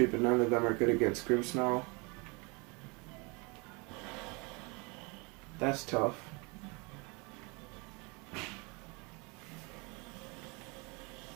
but none of them are good against Grimmsnarl. That's tough.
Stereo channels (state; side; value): quieter; left; 29.6 dB